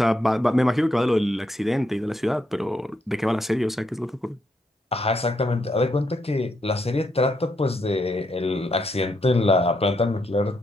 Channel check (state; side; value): normal; both; correlation 0.79